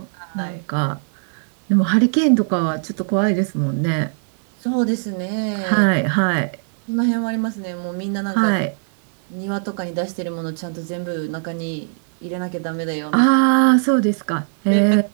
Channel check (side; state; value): left; silent; 62 dB below the other